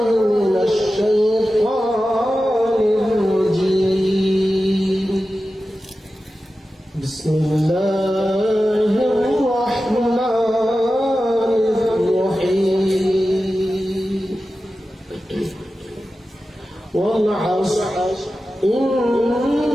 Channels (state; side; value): normal; both; correlation 0.93